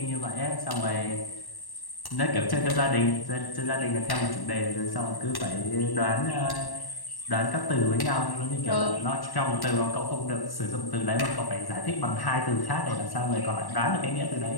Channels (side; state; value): right; late; 1.1 ms